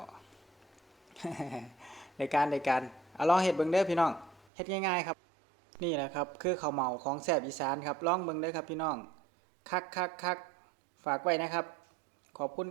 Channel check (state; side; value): drops out; left; at 4.5 s